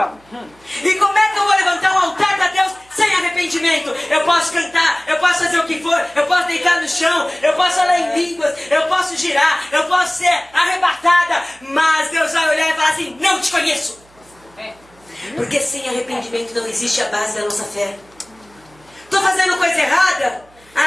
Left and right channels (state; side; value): noise; right; hum, 29 dB below the sound